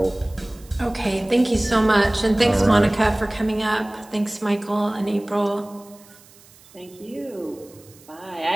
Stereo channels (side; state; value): right; noise; hiss, 25 dB below the sound